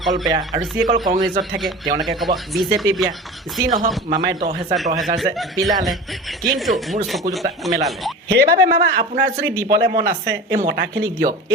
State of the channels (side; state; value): both; normal; correlation 0.34